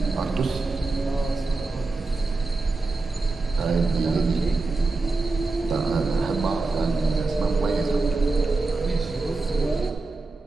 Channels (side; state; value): left; quieter; 3.6 dB